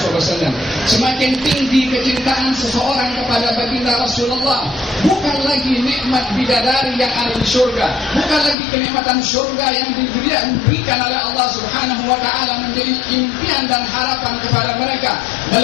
Semakin tinggi kecintaan seseorang kepada baginda Rasulullah, bukan lagi nikmat bidadari yang ada di surga, bukan lagi kenikmatan surga yang diberikan oleh Allah Subhanahu wa taala menjadi impian dan harapan kepada mereka,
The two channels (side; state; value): right; drops out; at 8.6 s